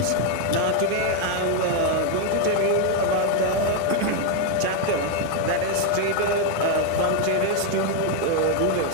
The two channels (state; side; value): different; both; correlation 0.01